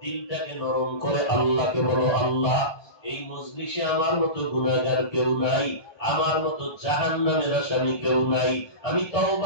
দিলটাকে নরম করে আল্লাহকে বলো, আল্লাহ এই মজলিসে আমার মতো গুনাহগার কেউ নাই, আমার মতো জাহান্নামের আসামি কেউ নাই, আমি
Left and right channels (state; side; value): late; right; 1.2 ms